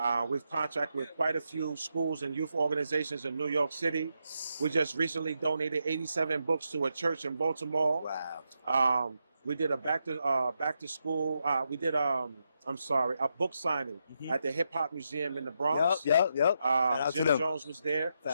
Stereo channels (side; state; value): both; inverted; correlation -0.83